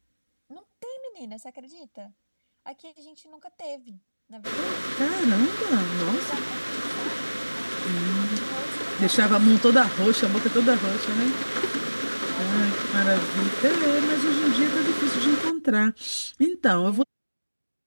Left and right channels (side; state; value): both; inverted; correlation -1.00